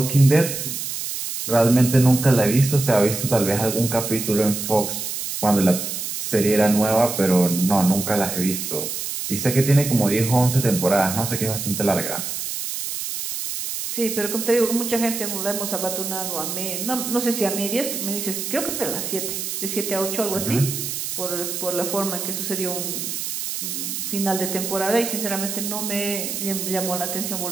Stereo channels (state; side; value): noise; right; hiss, 4 dB below the sound